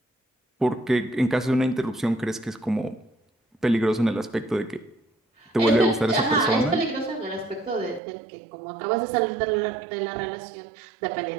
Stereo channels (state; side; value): drops out; left; at 8.0 s